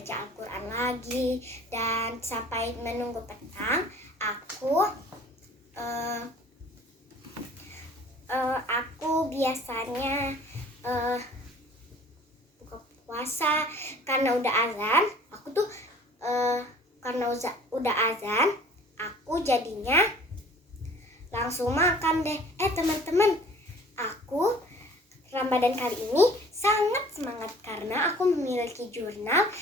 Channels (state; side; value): normal; both; correlation 0.50